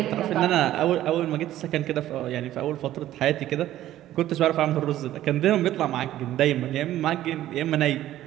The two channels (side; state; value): left; quieter; 13.5 dB